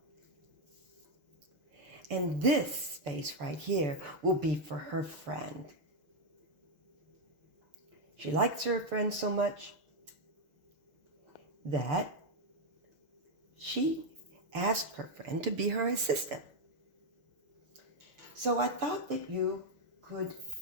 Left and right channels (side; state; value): left; late; 6.9 ms